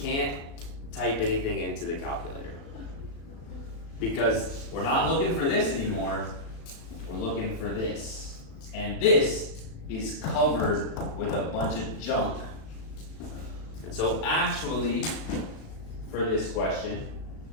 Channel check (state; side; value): late; right; 36 ms